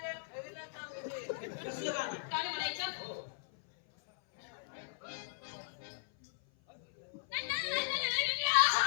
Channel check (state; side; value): silent; right; 53 dB below the other